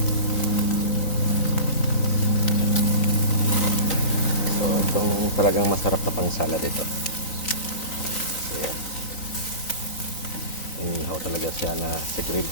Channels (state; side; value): late; right; 3.9 ms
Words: So, itong talagang masarap na pang salad ito. So, inihaw talaga siya na sa grill.